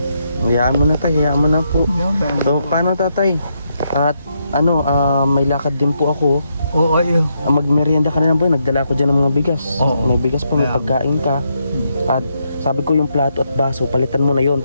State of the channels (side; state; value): both; inverted; correlation -0.79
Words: Hayaan mo na, tay. Hayaan mo na po. So, paano, tatay? At ano, may lakad din po ako. Oo, ayun. Magmerienda ka na lang po. Nagdala ko dyan ng mga bigas. Oo. May bigas pa, may Kaya- pagkain ka. At sabi ko yung plato at baso, palitan mo na yon.